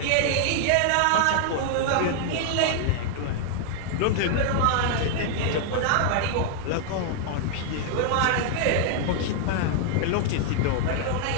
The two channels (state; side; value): different; both; correlation 0.00